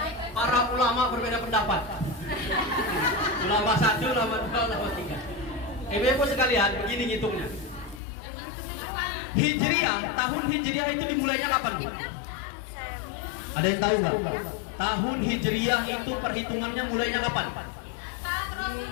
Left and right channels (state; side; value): drops out; right; at 8.0 s